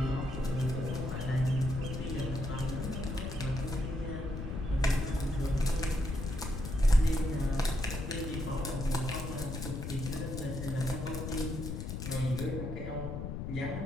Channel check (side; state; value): left; noise; rumble, 5 dB below the sound